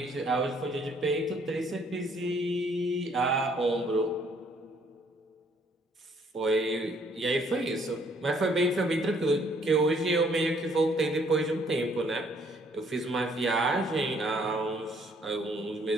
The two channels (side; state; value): both; normal; correlation 0.64